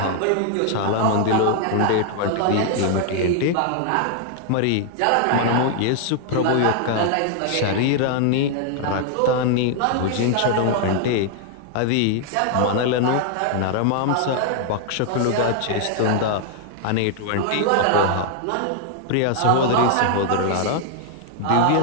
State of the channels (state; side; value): different; both; correlation 0.00